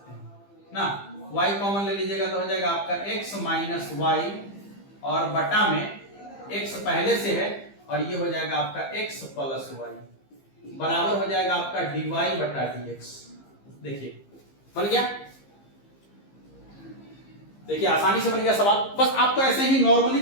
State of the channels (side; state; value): right; late; 15 ms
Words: हैं ना, y कॉमन ले लीजिएगा तो हो जाएगा आपका x माइनस y और बटा में x पहले से है और ये हो जाएगा आपका x प्लस y बराबर हो जाएगा आपका dy बटा dx। देखिए बन गया, देखिए आसानी से बन गया सवाल। बस आपको ऐसे ही